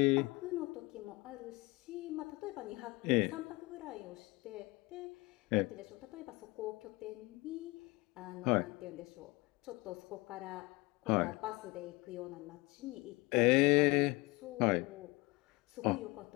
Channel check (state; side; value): quieter; right; 24.0 dB